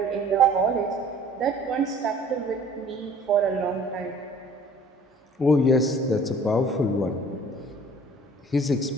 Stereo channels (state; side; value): normal; both; correlation 0.51